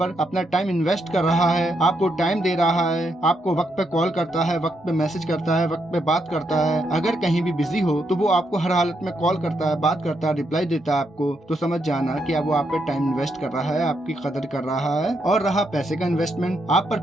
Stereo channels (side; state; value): both; normal; correlation 0.79